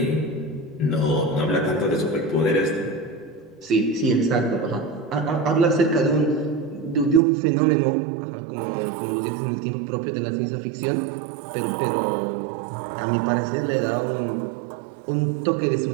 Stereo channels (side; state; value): left; drops out; at 7.2 s